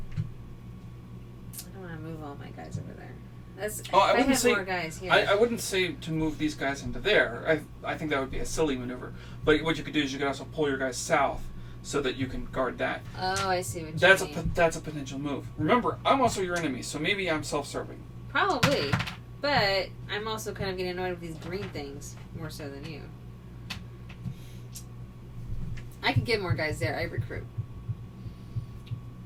I don't want to move all my guys over there. That's Oh, I if I wouldn't had say- more guys here. I wouldn't say to move these guys into there. I think that would be a silly maneuver. But what you could do is you could also pull your guys south, so that you can guard that. Oh, I see what you That's mean. that's a potential move. Remember, I'm also your enemy, so maybe I'm self-serving. Probably, but I'm also kind of getting annoyed with these green things more so than you. I could get more guys there. I recruit.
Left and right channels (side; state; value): both; identical; correlation 1.00